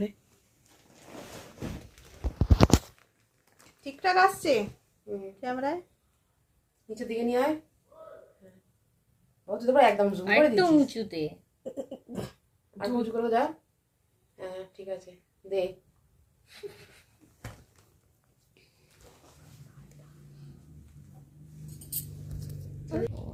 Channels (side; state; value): both; identical; correlation 1.00